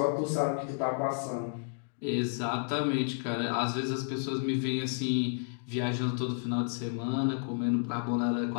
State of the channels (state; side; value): silent; right; digital silence